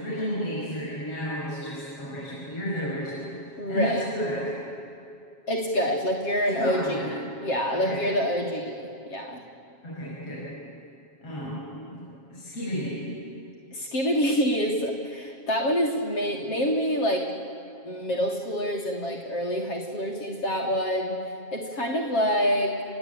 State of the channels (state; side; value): late; right; 7.4 ms